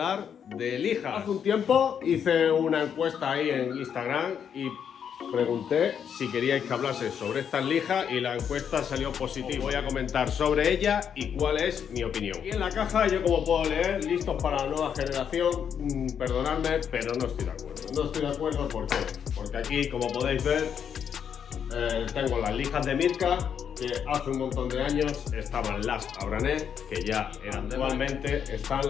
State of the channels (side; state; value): right; quieter; 8.0 dB